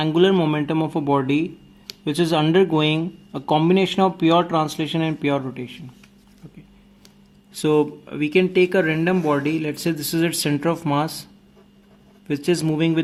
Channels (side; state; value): both; identical; correlation 1.00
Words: momentum of a body which is undergoing a combination of pure translation and pure rotation. Okay. So we can take a random body, let's say this is its center of mass, which is moving